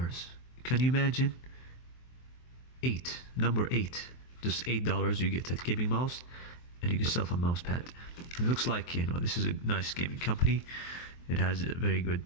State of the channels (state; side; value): late; right; 23 ms